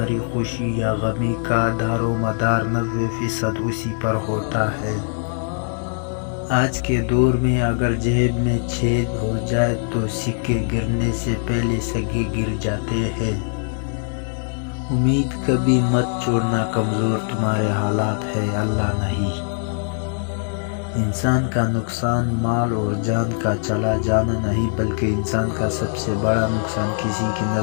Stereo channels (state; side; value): silent; right; 62 dB below the other